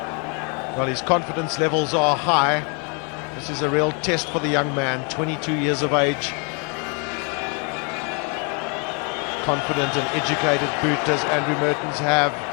Well, his confidence levels are high. This is a real test for the young man, 22 years of age. Confident and educated boot as Andrew Mertens have.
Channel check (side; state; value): right; quieter; 36.1 dB